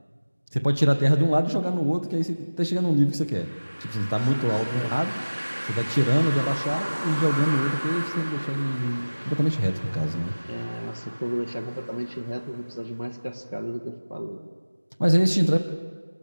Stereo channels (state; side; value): inverted; both; correlation -1.00